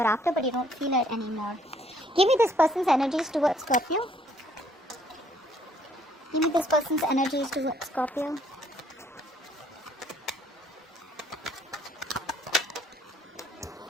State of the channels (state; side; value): normal; both; correlation 0.64